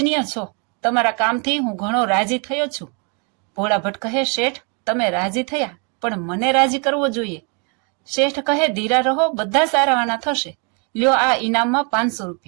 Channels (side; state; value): left; quieter; 35.8 dB